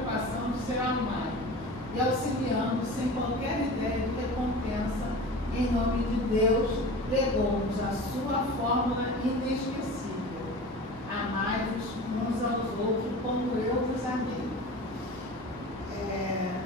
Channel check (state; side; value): normal; both; correlation 0.35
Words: de ser amado e auxiliando sem qualquer ideia de recompensa, em nome de Deus, legou-nos a sua fórmula inesquecível. Amai-vos uns aos outros como eu vos amei.